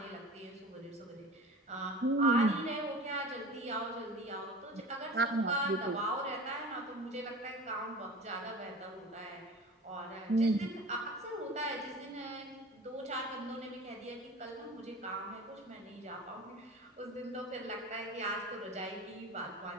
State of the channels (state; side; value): normal; both; correlation 0.36